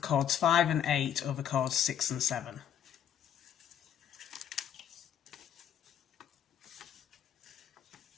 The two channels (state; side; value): quieter; right; 9.3 dB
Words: 5 and 8 over cords 6 and 7.